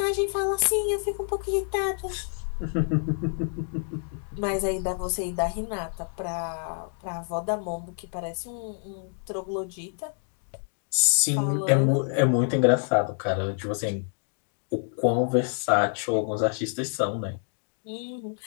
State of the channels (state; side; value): silent; right; 55 dB below the other